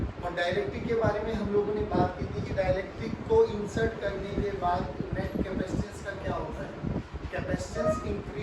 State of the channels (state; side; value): identical; both; correlation 1.00